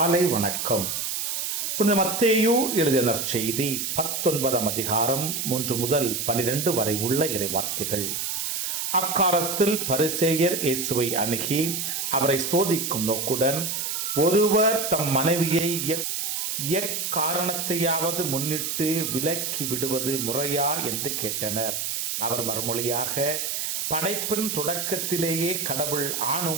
வணக்கம். புனித மத்தேயு எழுதிய நற்செய்தி 19ஆம் அதிகாரம் 1 முதல் 12 வரை உள்ள இறைவார்த்தைகள். அக்காலத்தில் பரிசேயர் இயேசுவை அணுகி அவரை சோதிக்கும் நோக்குடன், ஒருவர் தம் மனைவியை எக்காரணத்தையாவது முன்னிட்டு விலக்கி விடுவது முறையா என்று கேட்டனர். அவர் மறுமொழியாக, படைப்பின் தொடக்கத்திலேயே கடவுள்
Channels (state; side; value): noise; right; hiss, 2 dB below the sound